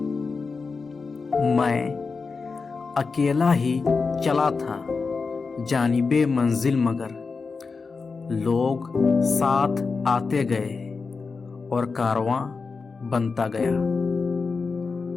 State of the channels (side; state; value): right; quieter; 4.6 dB